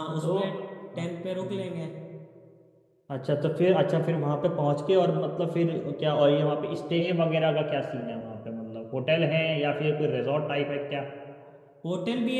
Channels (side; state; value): both; identical; correlation 1.00